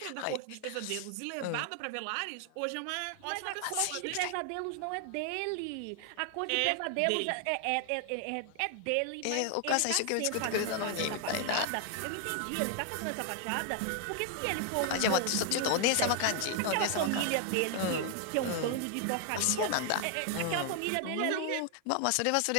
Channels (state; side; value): different; both; correlation 0.00